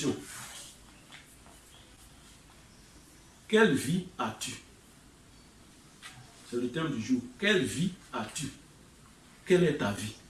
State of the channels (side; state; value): both; identical; correlation 1.00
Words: Quelle vie as-tu? C'est le thème du jour. Quelle vie as-tu? Quelle est ta vie?